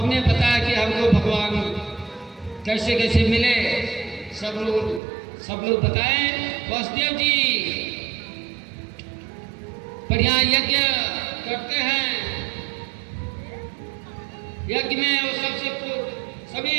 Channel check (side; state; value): left; drops out; at 5.0 s